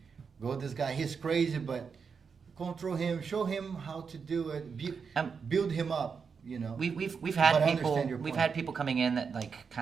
go with this guy. He's crazy, but control him. Show him how to do it. Build him up. You know. We've had But I people understand your we've point. had people coming in that like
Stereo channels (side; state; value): left; quieter; 5.8 dB